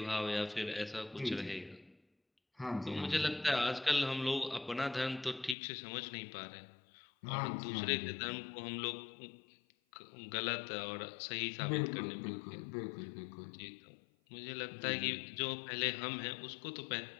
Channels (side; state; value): right; drops out; at 5.6 s